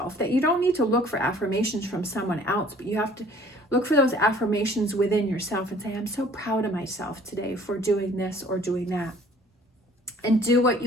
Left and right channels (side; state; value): both; normal; correlation 0.54